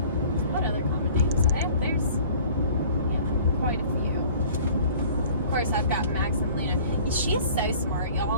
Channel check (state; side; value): inverted; both; correlation -0.48